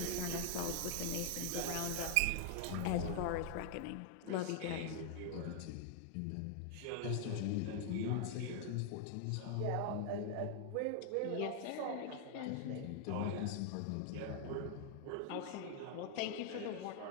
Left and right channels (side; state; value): both; different; correlation 0.00